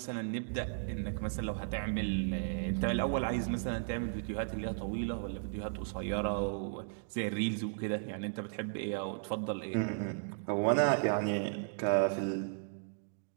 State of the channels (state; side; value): silent; left; digital silence